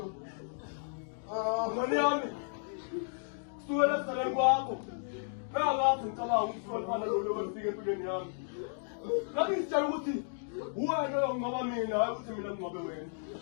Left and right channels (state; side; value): silent; right; digital silence